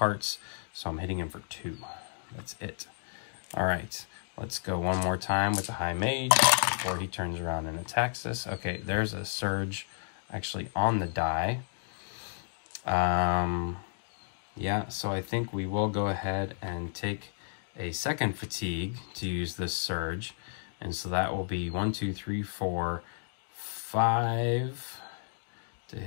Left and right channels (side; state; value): right; silent; digital silence